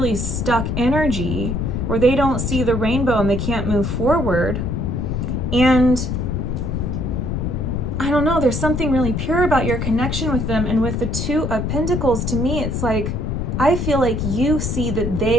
stuck energy where they don't see the rainbow and they can't move forward. And I don't know, there's something really pure about your connection with them. And with the Two of Pentacles, to me, it's like, I feel like you see that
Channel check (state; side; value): noise; left; rumble, 1 dB below the sound